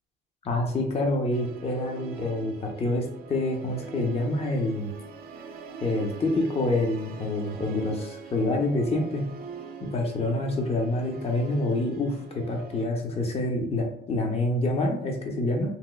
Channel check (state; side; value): normal; both; correlation 0.52